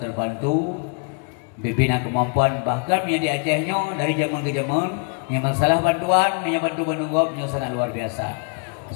Bibina kemampuan bahkan yang di Acehnya dari zaman ke zaman yang masalah bantuan yang bantu menunggop yang sangat luar biasa.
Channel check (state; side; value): quieter; right; 38.3 dB